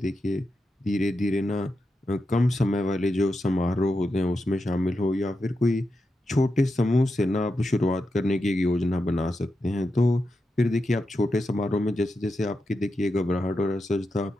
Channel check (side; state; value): both; normal; correlation 0.88